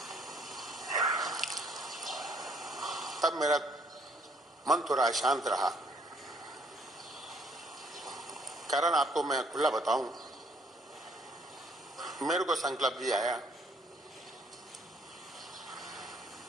तब मेरा मन थोड़ा शांत रहा। कारण आपको मैं खुला बताऊं, मेरे को संकल्प भी आया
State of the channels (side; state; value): both; normal; correlation 0.64